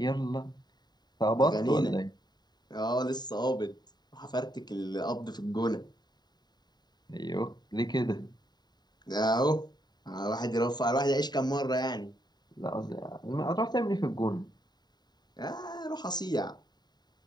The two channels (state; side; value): late; right; 0.20 ms